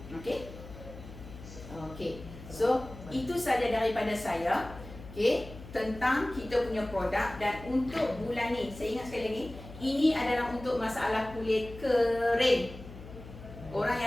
Okey? Okey. So, itu saja daripada saya. Okey, tentang kita punya produk. Dan untuk bulan ni, saya ingat sekali lagi, ini adalah untuk masalah kulit kering. Orang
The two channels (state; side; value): noise; left; hum, 15 dB below the sound